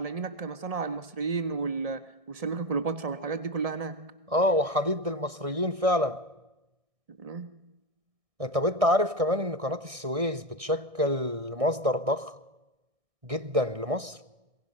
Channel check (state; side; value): late; left; 1.6 ms